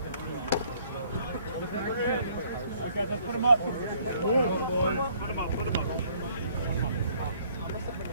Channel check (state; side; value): inverted; both; correlation -0.62